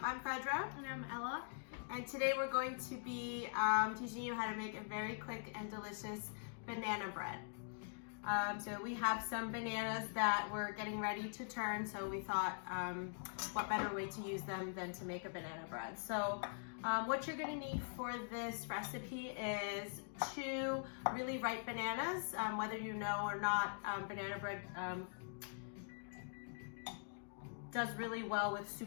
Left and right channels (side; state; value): right; silent; digital silence